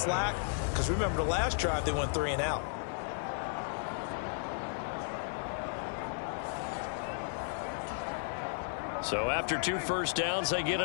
Because remember the last drive, they went 3 and out. So after 2 first downs, they get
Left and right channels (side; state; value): right; silent; 55 dB below the other